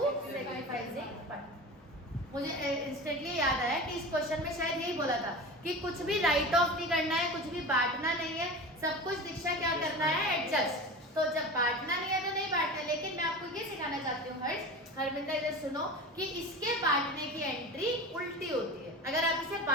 sacrificing partner. मुझे इंस्टेंटली याद आया कि इस क्वेश्चन में शायद यही बोला था कि कुछ भी राइट ऑफ नहीं करना है, कुछ भी बांटना नहीं है, सब कुछ दीक्षा क्या करना है? एडजस्ट। तो जब बांटना नहीं है तो नहीं बांटना, लेकिन मैं आपको ये सिखाना चाहती हूँ हरमिंदर इधर सुनो कि इसके बांटने की एंट्री उल्टी होती है। अगर आप इसे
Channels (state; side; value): normal; both; correlation 0.31